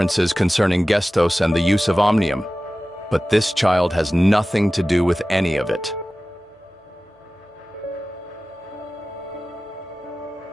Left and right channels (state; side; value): normal; both; correlation 0.96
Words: concerning Gestos and the use of Omnium, but this child has nothing to do with any of it.